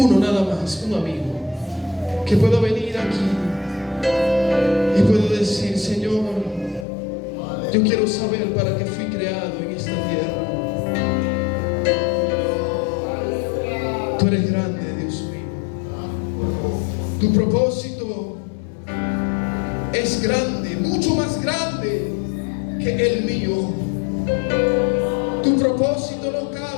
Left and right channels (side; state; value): right; drops out; at 6.9 s